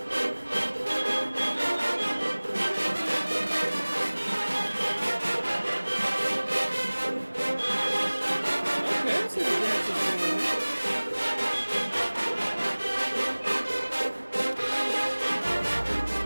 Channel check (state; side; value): inverted; both; correlation -1.00